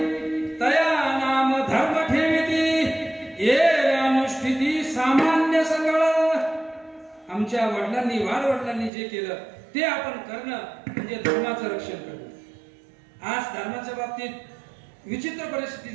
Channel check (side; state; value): left; drops out; at 8.9 s